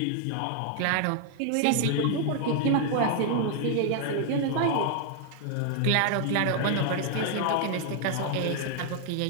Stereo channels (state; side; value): different; both; correlation 0.00